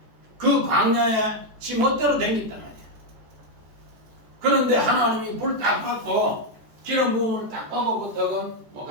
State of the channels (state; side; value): late; left; 14 ms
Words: 그 광야에 지 멋대로 댕겼단 말이야. 그런데 하나님이 불 딱 받고 기름 부음을 딱 받고부터 뭐